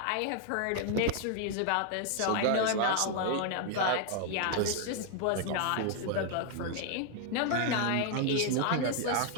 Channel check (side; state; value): both; different; correlation 0.00